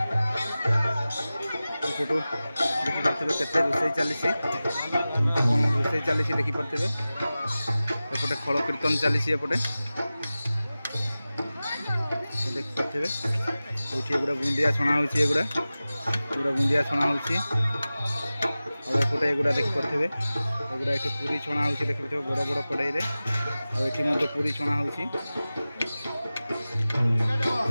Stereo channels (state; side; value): inverted; both; correlation -0.96